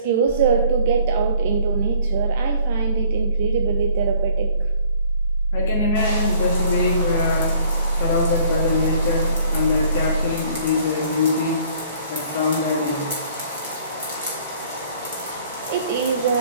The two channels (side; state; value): both; inverted; correlation -0.57